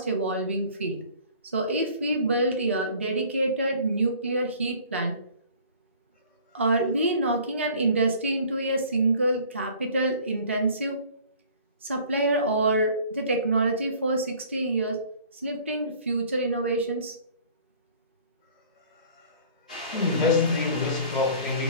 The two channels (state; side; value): inverted; both; correlation -0.50